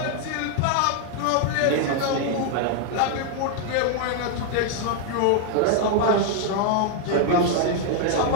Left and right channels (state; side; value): different; both; correlation 0.00